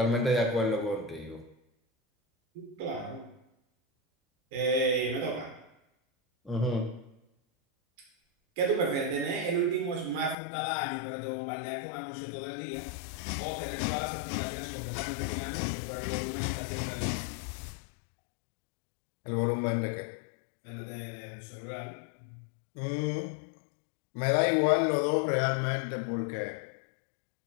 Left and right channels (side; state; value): right; drops out; at 10.4 s